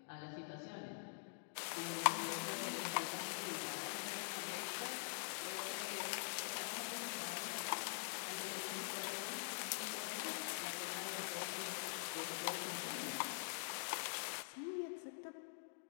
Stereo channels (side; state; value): right; silent; digital silence